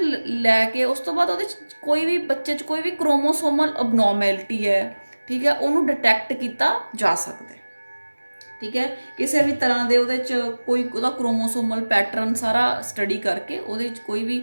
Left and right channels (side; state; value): both; inverted; correlation -1.00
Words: ਲੈ ਕੇ ਉਸ ਤੋਂ ਬਾਅਦ ਉਹਦੇ 'ਚ ਕੋਈ ਵੀ ਬੱਚੇ 'ਚ ਕੋਈ ਵੀ ਕ੍ਰੋਮੋਸੋਮਲ ਅਬਨੋਰਮੈਲਿਟੀ ਹੈ, ਠੀਕ ਹੈ, ਉਹਨੂੰ ਡਿਟੈਕਟ ਕੀਤਾ ਜਾ ਸਕਦਾ, ਠੀਕ ਹੈ। ਕਿਸੇ ਵੀ ਤਰ੍ਹਾਂ ਦੇ ਉਹਦੇ 'ਚ ਕੋਈ ਉਹਦਾ ਕ੍ਰੋਮੋਸੋਮਲ ਪੈਟਰਨ ਸਾਰਾ ਸਟੱਡੀ ਕਰਕੇ ਉਹਦੇ 'ਚ ਕੋਈ